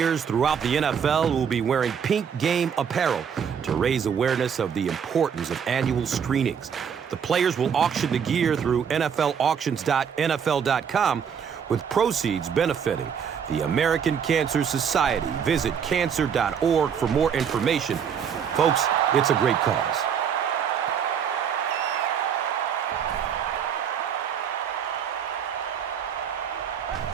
throughout the NFL will be wearing pink game apparel to raise awareness of the importance of annual screenings. The players will auction the gear through NFLauctions.nfl.com, with proceeds benefiting the American Cancer Society. Visit cancer.org for more information. Folks, it's a great cause.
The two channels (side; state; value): left; quieter; 7.5 dB